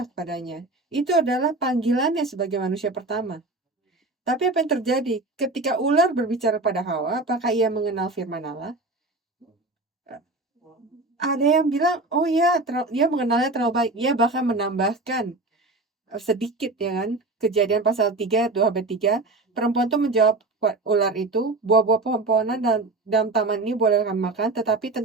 kepadanya. Itu adalah panggilannya sebagai manusia pertama. Tapi apa yang terjadi? Ketika ular berbicara pada Hawa, apakah ia mengenal firman Allah? Ada yang bilang, oh ya, dia mengenalnya terlalu baik. Ia bahkan menambahkan sedikit, ya kan? Kejadian pasal 3, 2-3. Perempuan itu menjawab ular itu, buah-buah pohon-pohonan dalam taman ini boleh kamu makan, tetapi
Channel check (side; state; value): left; quieter; 3.1 dB